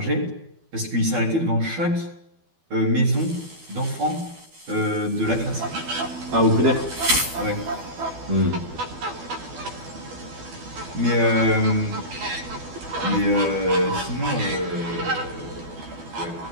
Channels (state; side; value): late; left; 12 ms